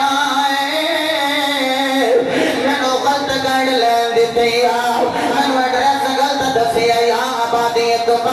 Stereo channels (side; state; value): both; identical; correlation 1.00